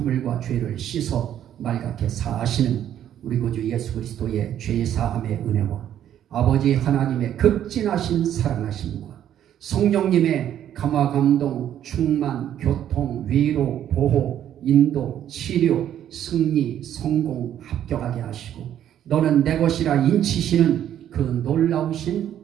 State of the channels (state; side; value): quieter; left; 10.7 dB